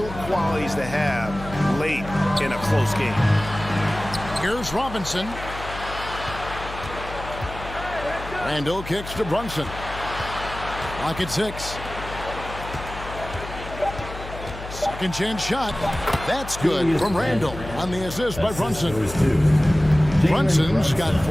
qualities to have late in a close game. Here's Robinson. Randall kicks to Brunson. Lock at 6. Second chance shot. That's good from Randall on the assist by Brunson. Brunson's got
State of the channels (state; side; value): noise; left; hum, 11 dB below the sound